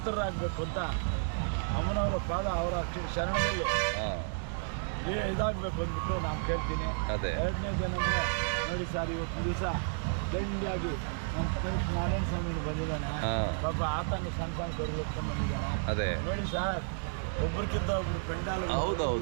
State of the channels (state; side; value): silent; left; digital silence